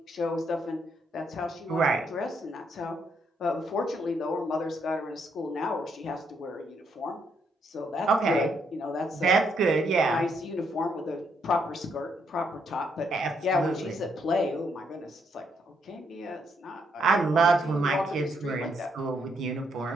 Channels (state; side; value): normal; both; correlation 0.75